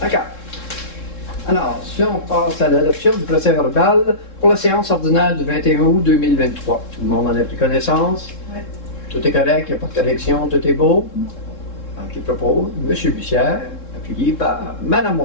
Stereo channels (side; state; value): right; late; 3.7 ms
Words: D'accord. Alors, si on passe à l'adoption du procès-verbal pour la séance ordinaire du 21 août 2023. Tout le monde en a pris connaissance? Oui. Tout est correct, il n'y a pas de correction, tout est beau? Alors, qui propose? M. Bussière, appuyé par Mme